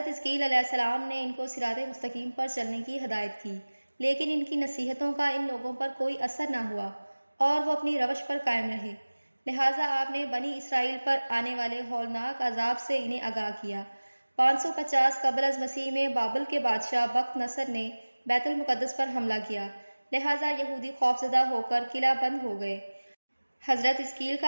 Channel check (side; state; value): both; inverted; correlation -1.00